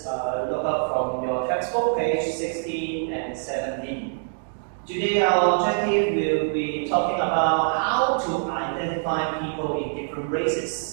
look up from your textbook, page 16 and 17. Today our objective will be talking about how to identify people in different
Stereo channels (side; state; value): left; silent; digital silence